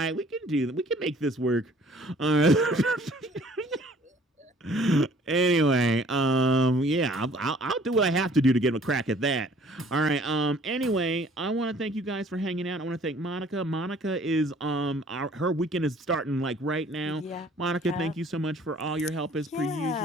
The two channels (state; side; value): normal; both; correlation 0.55